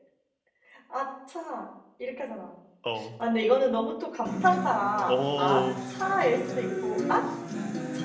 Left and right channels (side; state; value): both; identical; correlation 1.00